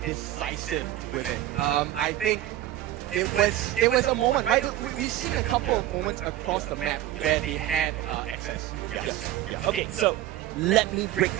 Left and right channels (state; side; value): quieter; left; 13.7 dB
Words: decisive with it. I think it was a moment, right? We've seen a couple of moments across the map where they had access. Yes. Okay, so let me break